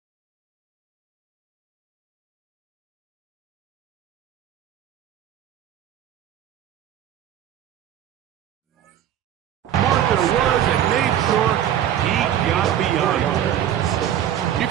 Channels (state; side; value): quieter; left; 10.7 dB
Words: Martha was and made sure he got beyond her. You